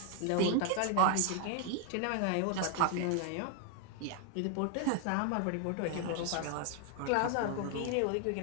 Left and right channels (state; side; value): different; both; correlation 0.00